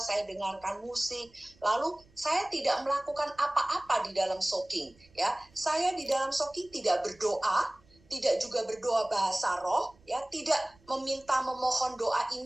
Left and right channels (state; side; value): noise; right; rumble, 29 dB below the sound